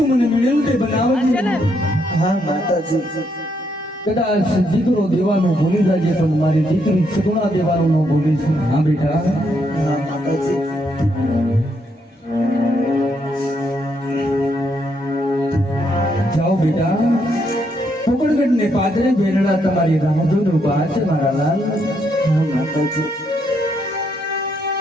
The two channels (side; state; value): both; normal; correlation 0.76